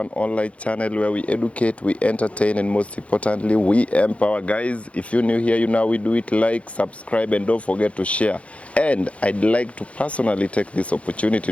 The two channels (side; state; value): right; late; 0.063 ms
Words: online channel where we educate, we entertain, and most importantly, we empower. Guys, if you're new here, you know we do it, like, subscribe, and don't forget to share. And I'd like to personally take this opportunity